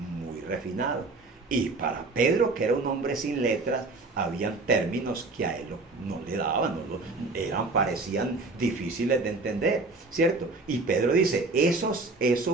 refinado. Y para Pedro, que era un hombre sin letras, habían términos que a él no le daban, parecían difíciles de entender, ¿cierto? Y Pedro dice,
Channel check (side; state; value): left; quieter; 3.5 dB